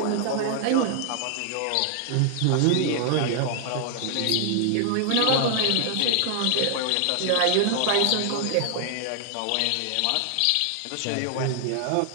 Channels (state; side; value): different; both; correlation 0.00